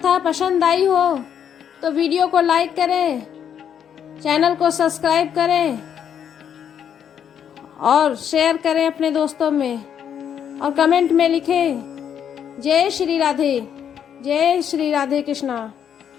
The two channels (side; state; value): right; quieter; 8.7 dB